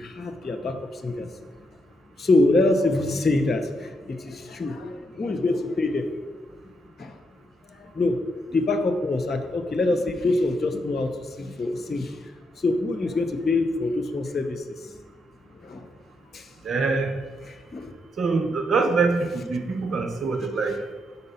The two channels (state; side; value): normal; both; correlation 0.79